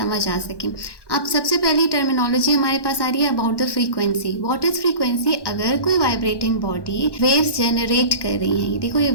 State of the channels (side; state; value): right; late; 1.1 ms